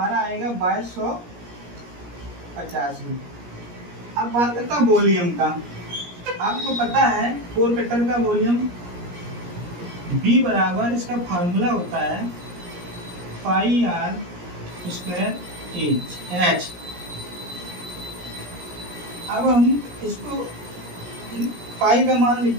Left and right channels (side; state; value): left; late; 17 ms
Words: आएगा 2285। अब बात करता हूँ वॉल्यूम का। आपको पता है कोर कटर का वॉल्यूम B बराबर, इसका फार्मूला होता है पाई r स्क्वायर H। अब हम इसको पाई का मान